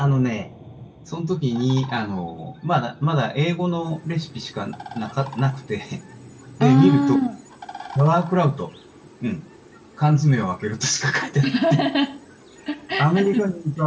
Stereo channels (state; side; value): identical; both; correlation 1.00